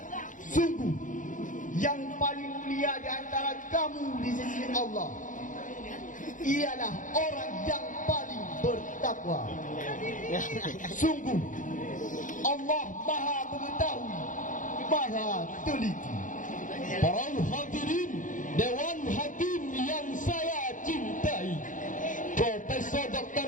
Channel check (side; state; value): right; late; 0.38 ms